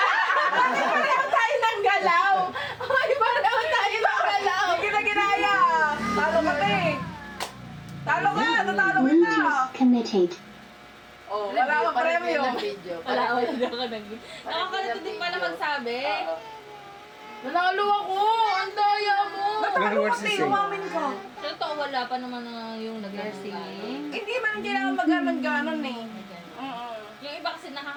Tayo ng galaw! Ay, pareho tayo ng galaw! Hindi kita ginaya! Talo ka, te! Talo ka! Natalo kita! Bluetooth connected. Oh, wala akong premyo. Wala na ako nag... Nakakalito din pala magsabi. Nanalo ako! Ang daya mo! Natalo ka, te! Umamin ka! Totoo, wala pa naman na yung nag-singing. Hindi man kailangan mag-ganon eh. Yung iba kasi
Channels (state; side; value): identical; both; correlation 1.00